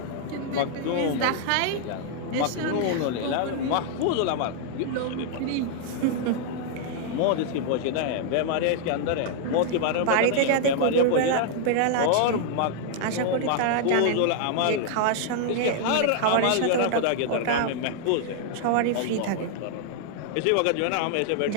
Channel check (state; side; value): different; both; correlation 0.00